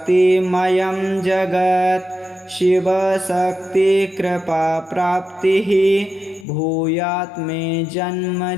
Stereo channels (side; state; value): right; drops out; at 6.5 s